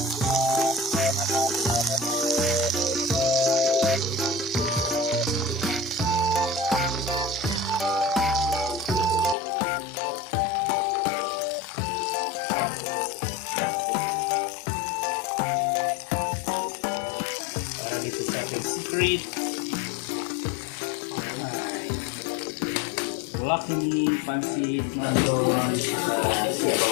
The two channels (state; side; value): drops out; right; at 9.3 s